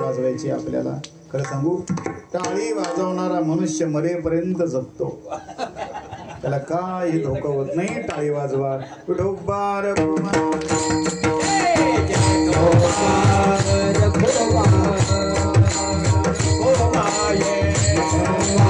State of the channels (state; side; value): identical; both; correlation 1.00